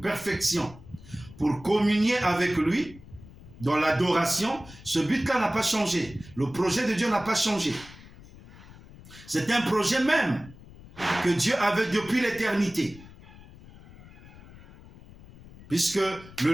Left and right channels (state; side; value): noise; left; rumble, 19 dB below the sound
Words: pour communier avec lui dans l'adoration, ce but-là n'a pas changé. Le projet de Dieu n'a pas changé. C'est un projet même que Dieu avait depuis l'éternité. Puisque